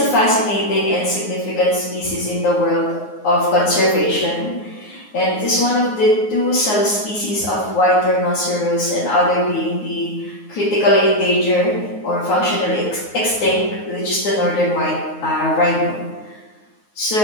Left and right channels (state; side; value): late; right; 9.5 ms